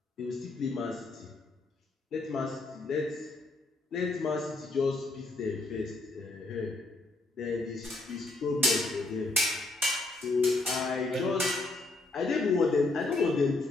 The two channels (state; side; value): quieter; right; 3.1 dB